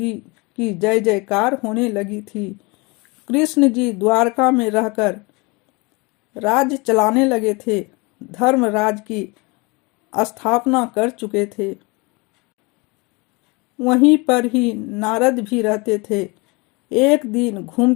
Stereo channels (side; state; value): right; quieter; 27.1 dB